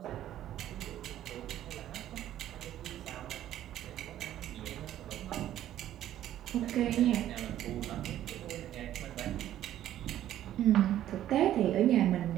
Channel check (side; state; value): left; quieter; 12.3 dB